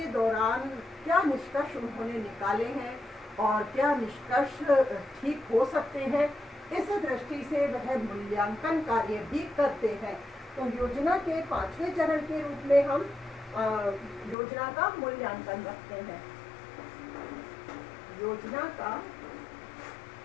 दौरान क्या निष्कर्ष उन्होंने निकाले हैं और क्या निष्कर्ष ठीक हो सकते हैं, इस दृष्टि से वह मूल्यांकन कार्य भी करते हैं। तो योजना के पांचवें चरण के रूप में हम योजना का मूल्यांकन रखते हैं। योजना का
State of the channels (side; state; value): right; drops out; at 14.4 s